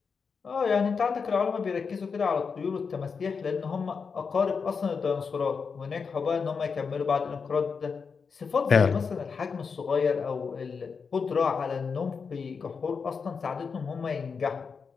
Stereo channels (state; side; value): quieter; right; 5.5 dB